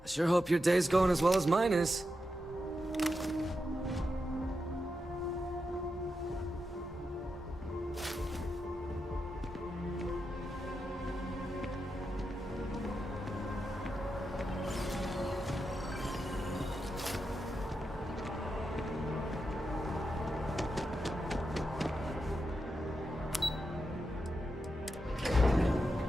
sure hope your day's going as well as mine is.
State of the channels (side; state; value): both; normal; correlation 0.87